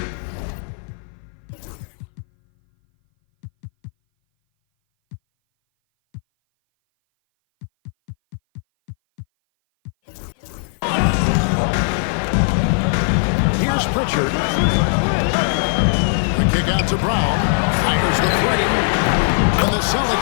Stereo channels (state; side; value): silent; right; 59 dB below the other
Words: Here's Pritchard. The kick out to Brown. Fires the three. And the